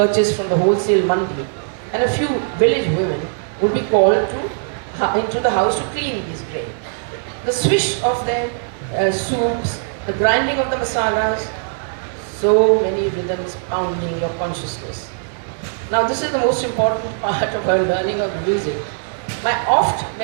from the wholesale mandi, and a few village women would be called into the house to clean these grain. The swish of their soups, the grinding of the masalas, so many rhythms pounding your consciousness. Now this is the most important part of her learning of music. My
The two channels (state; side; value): silent; left; digital silence